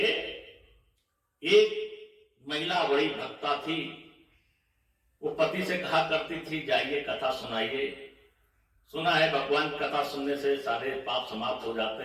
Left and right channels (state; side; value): identical; both; correlation 1.00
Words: एक महिला बड़ी भक्ता थी, वो पति से कहा करती थी, जाइए कथा सुनाइए, सुना है भगवान की कथा सुनने से सारे पाप समाप्त हो जाते